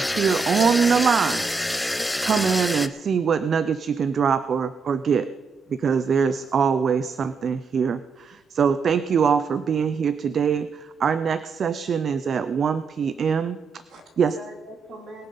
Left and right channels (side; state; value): left; quieter; 5.3 dB